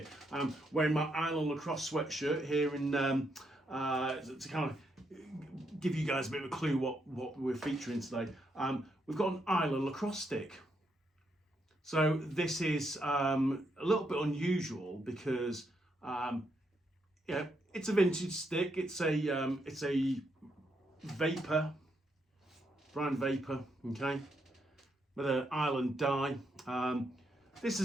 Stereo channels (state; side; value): normal; both; correlation 0.78